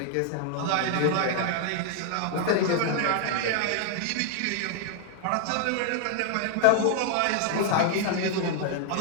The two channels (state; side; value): different; both; correlation 0.00